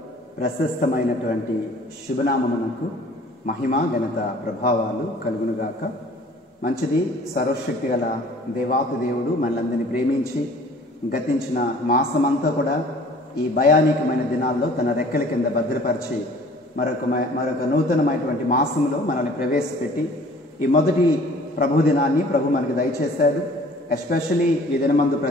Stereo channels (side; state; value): both; normal; correlation 0.51